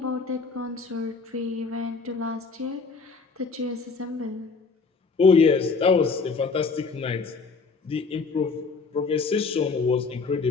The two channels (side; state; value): right; quieter; 4.6 dB